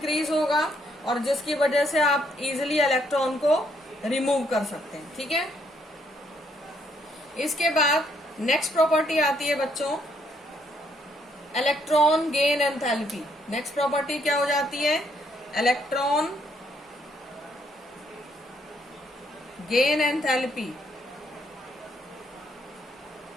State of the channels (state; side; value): normal; both; correlation 0.71